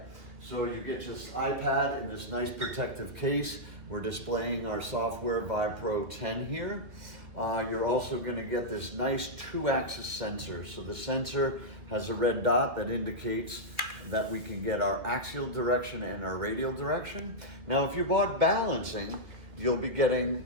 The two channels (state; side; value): late; left; 2.0 ms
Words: So you get this iPad in this nice protective case. We're displaying our software VibePro 10 here. You're also going to get this nice 2-axis sensor. So the sensor has a red dot that indicates that we can get our axial direction and our radial direction. Now, if you bought balancing, you'll be getting